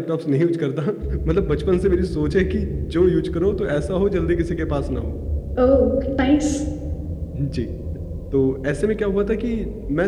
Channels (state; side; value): identical; both; correlation 1.00